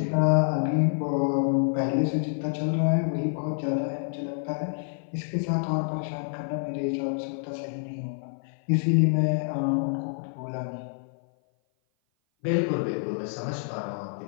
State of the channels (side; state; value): right; silent; 56 dB below the other